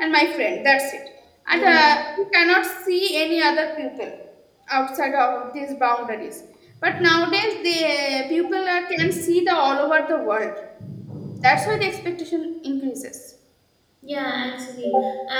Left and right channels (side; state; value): both; identical; correlation 1.00